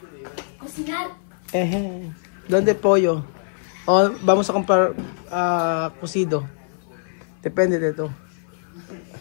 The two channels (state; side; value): silent; right; 57 dB below the other